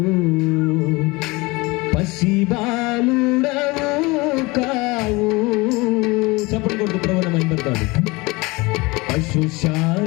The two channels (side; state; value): right; quieter; 23.9 dB